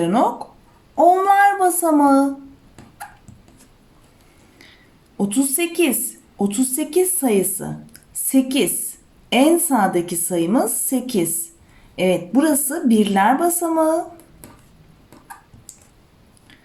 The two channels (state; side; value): identical; both; correlation 1.00